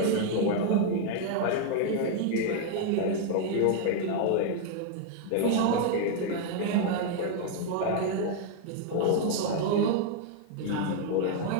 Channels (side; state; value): both; different; correlation 0.00